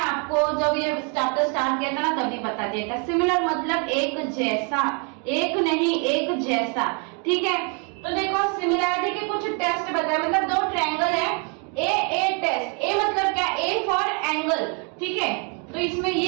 जब ये चैप्टर स्टार्ट किया था ना तभी बता दिया था। सिमिलर मतलब एक जैसा, एक नहीं एक जैसा, ठीक है। तो देखो सिमिलैरिटी के कुछ टेस्ट बताए, मतलब दो ट्रायंगल है ए टेस्ट। ए मतलब क्या, ए फॉर एंगल, ठीक है। तो इसमें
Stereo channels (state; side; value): quieter; left; 37.1 dB